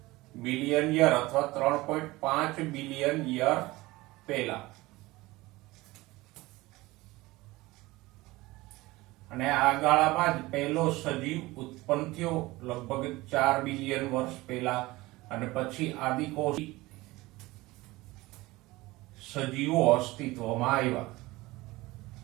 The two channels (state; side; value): quieter; left; 20.1 dB